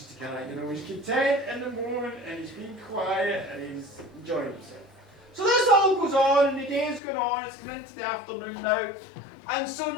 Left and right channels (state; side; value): drops out; right; at 7.0 s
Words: to kind of, he's content in the moment and he's being quiet and he's enjoying himself. So this all goes on and the day's going on, it's coming into the afternoon now. And so